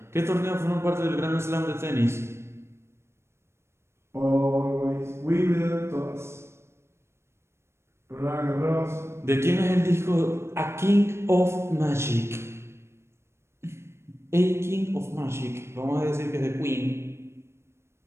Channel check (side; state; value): left; late; 0.13 ms